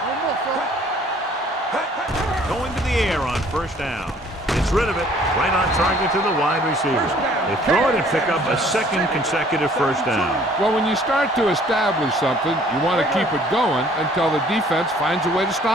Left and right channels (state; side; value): normal; both; correlation 0.57